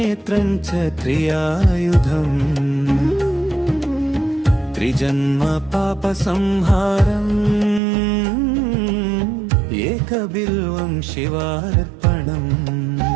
च त्रियायुधम् त्रिजन्म पापसंहारम् एकबिल्वं शिवार्पणम्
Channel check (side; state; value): left; drops out; at 7.8 s